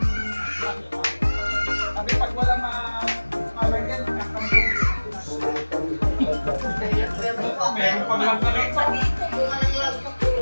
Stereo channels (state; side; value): inverted; both; correlation -1.00